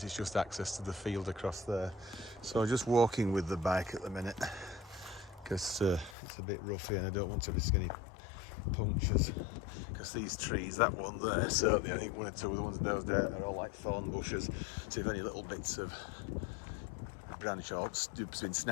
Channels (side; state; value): right; drops out; at 6.2 s